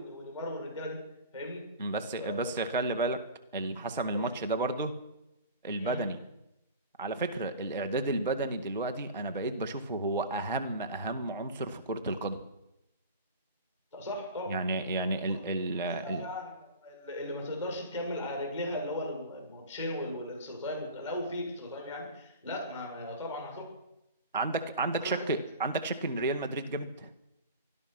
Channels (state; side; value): inverted; both; correlation -0.35